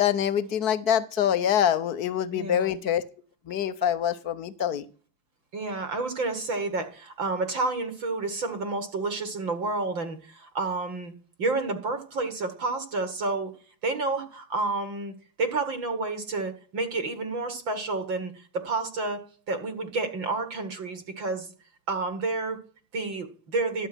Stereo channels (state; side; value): late; left; 6.0 ms